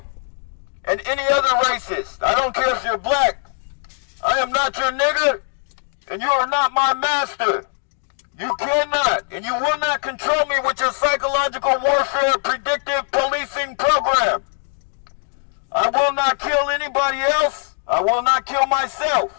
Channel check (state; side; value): silent; right; 60 dB below the other